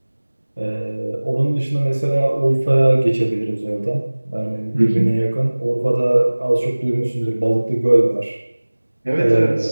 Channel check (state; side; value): inverted; both; correlation -1.00